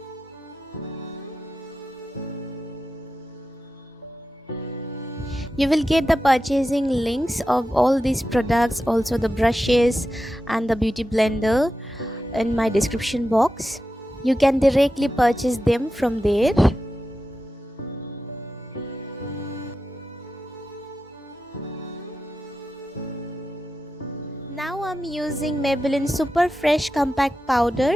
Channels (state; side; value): normal; both; correlation 0.91